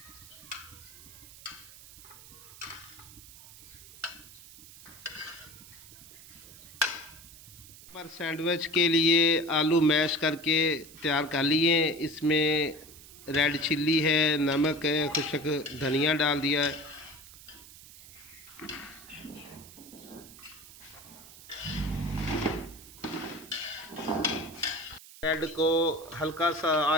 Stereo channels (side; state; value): right; noise; hiss, 19 dB below the sound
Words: पर सैंडविच के लिए आलू मैश करके तैयार कर लिए। इसमें रेड चिल्ली है, नमक है, खुशक धनिया डाल दिया है। ब्रेड को हल्का सा